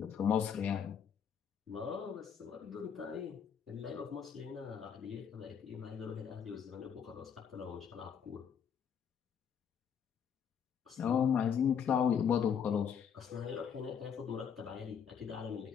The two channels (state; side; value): quieter; right; 7.6 dB